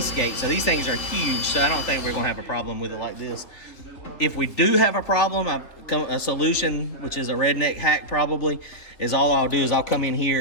So these things are huge. So I don't think we're going to have a problem with it like this. If we do have a problem, a solution, which is a redneck hack probably, is all I'll do is I'll come in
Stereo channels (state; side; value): late; right; 3.1 ms